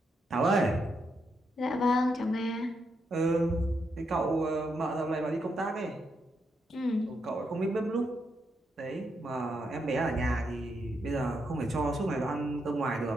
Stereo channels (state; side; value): normal; both; correlation 0.81